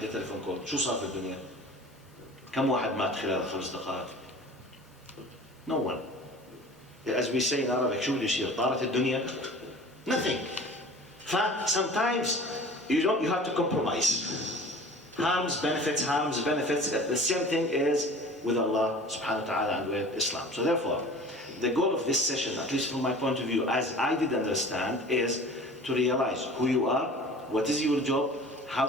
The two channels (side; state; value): both; normal; correlation 0.43